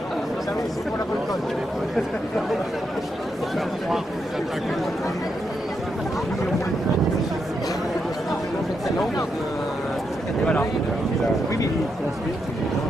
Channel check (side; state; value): both; normal; correlation 0.82